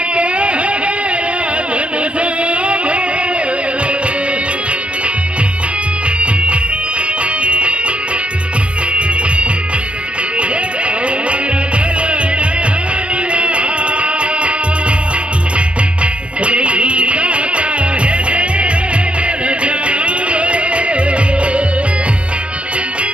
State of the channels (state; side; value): late; left; 0.059 ms